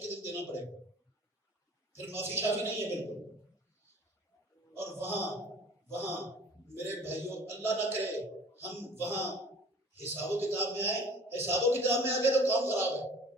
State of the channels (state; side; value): normal; both; correlation 0.48